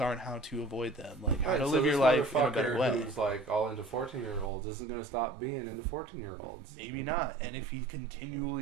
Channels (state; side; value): drops out; left; at 4.5 s